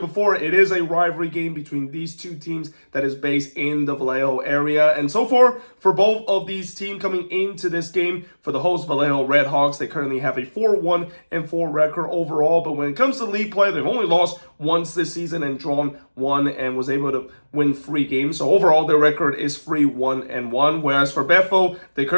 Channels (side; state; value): both; inverted; correlation -1.00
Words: before, it is a rivalry game between these two teams that is based in the Vallejo area. And so far, for both of these teams coming into this game, for the host Vallejo Redhawks, they currently have a 4-1-4 record overall. But when it comes to league play, they've only lost once this season and drawn one and was able to win 3 games. So overall, their record is 3-1-1. Whereas for Bethel, they